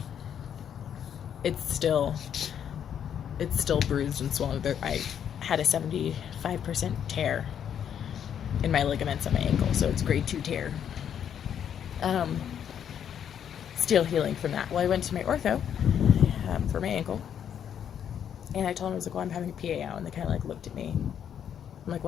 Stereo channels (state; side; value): quieter; right; 8.9 dB